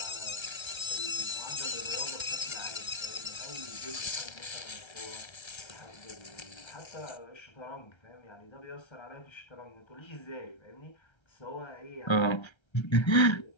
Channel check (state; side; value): late; right; 1.3 ms